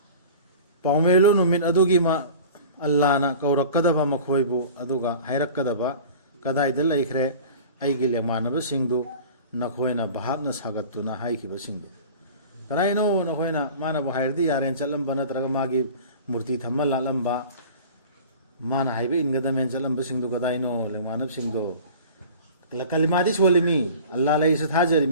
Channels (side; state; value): both; inverted; correlation -0.41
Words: paumelo numin adugi ma Allah na kaurakadaba makhoibu aduga hairakadaba kadaida laikhre aigi lemanaba singdu nakhoina bahapna sagatuna haikiba singdu kanaino nakhoina mana bu hairdi yaren chalamba natraga magi murti thamma lalamba mana haibe ingadamen chalamba singdu kadaino lemanab singdu kalimadi solimi Allah lai sa